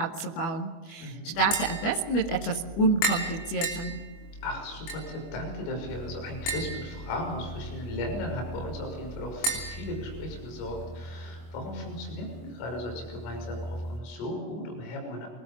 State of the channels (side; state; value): right; late; 25 ms